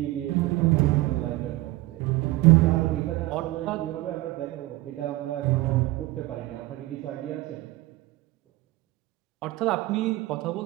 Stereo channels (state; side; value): quieter; left; 18.9 dB